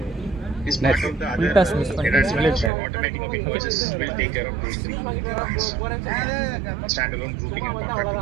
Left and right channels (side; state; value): left; drops out; at 2.7 s